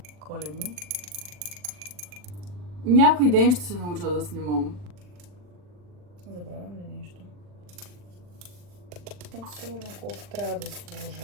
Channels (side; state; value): left; late; 40 ms